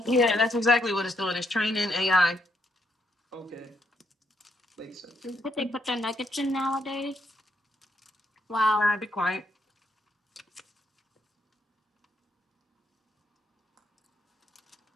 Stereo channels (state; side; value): normal; both; correlation 0.76